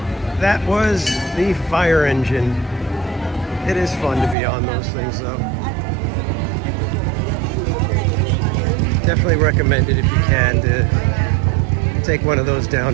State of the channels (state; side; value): drops out; left; at 4.4 s